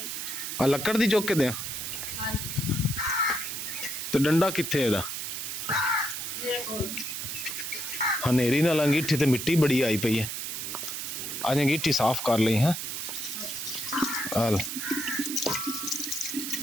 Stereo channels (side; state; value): right; noise; hiss, 5 dB below the sound